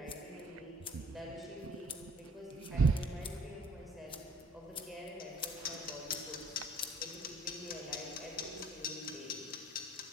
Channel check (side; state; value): both; normal; correlation 0.57